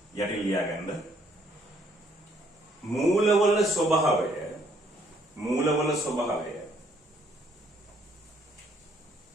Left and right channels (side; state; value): both; normal; correlation 0.66